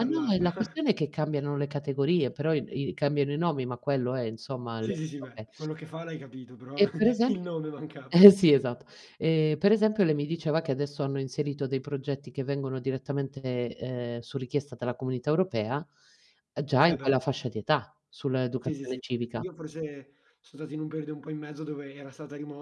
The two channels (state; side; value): identical; both; correlation 1.00